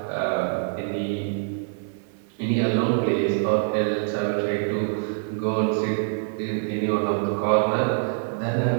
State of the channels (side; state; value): left; silent; digital silence